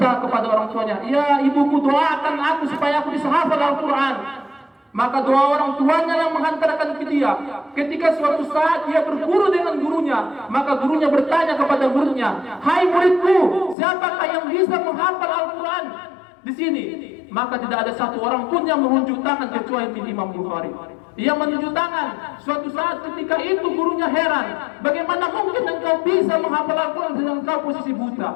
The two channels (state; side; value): drops out; right; at 13.8 s